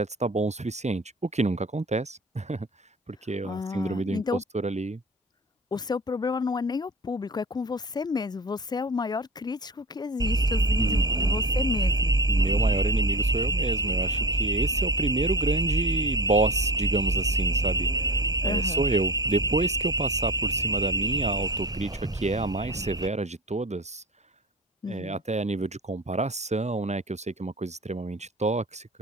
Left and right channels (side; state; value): both; normal; correlation 0.31